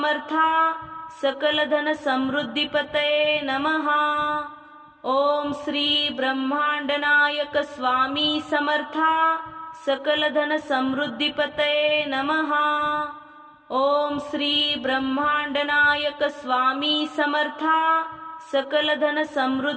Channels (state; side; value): identical; both; correlation 1.00